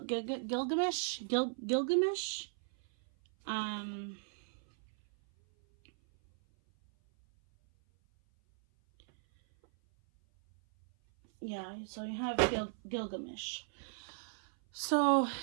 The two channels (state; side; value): silent; left; 54 dB below the other